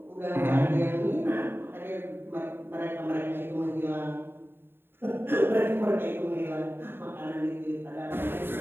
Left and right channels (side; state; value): left; late; 0.11 ms